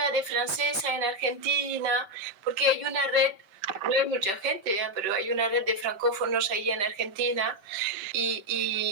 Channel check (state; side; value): late; left; 5.2 ms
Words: de francesa en Argentina, porque hay una red, no hay mucha gente, pero hay una red de francófonos ahí en Argentina